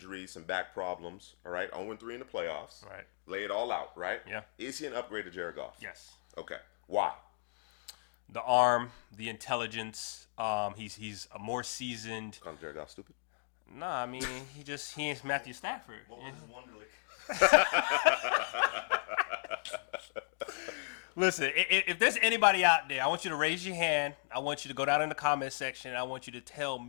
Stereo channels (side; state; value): right; silent; digital silence